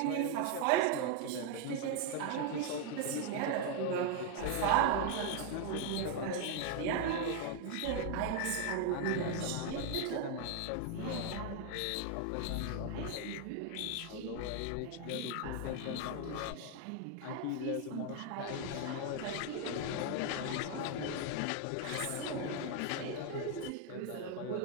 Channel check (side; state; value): both; different; correlation 0.00